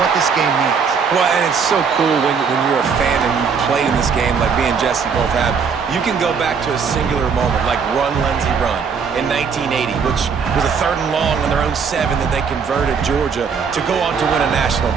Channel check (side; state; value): left; quieter; 6.0 dB